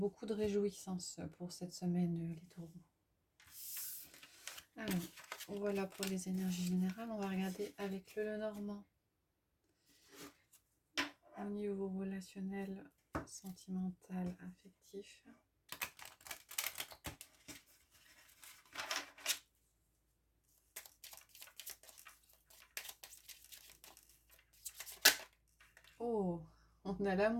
de réjouissance pour cette semaine, les taureaux. Alors, voilà pour les énergies générales. On va regarder avec le Lenormand. Au niveau relationnel, sentimental, affectif. Oh, on a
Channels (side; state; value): both; identical; correlation 1.00